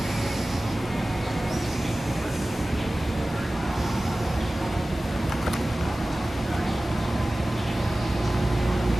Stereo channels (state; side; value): normal; both; correlation 0.97